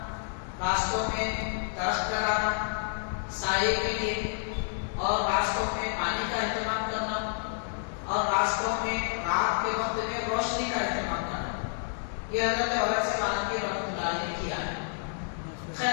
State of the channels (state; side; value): silent; right; 58 dB below the other